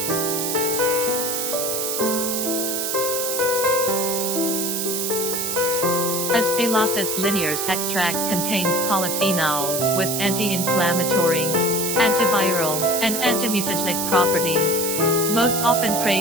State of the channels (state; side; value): noise; right; hiss, 1 dB below the sound